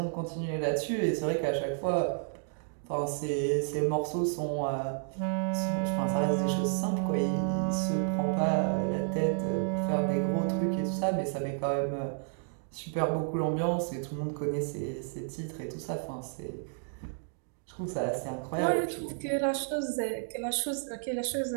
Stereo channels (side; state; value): left; silent; digital silence